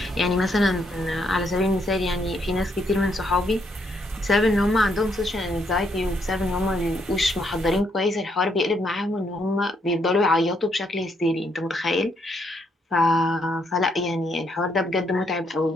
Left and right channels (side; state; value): both; normal; correlation 0.74